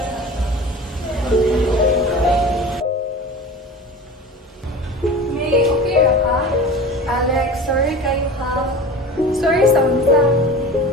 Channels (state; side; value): normal; both; correlation 0.35